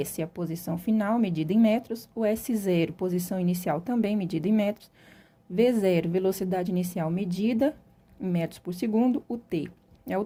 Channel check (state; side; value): identical; both; correlation 1.00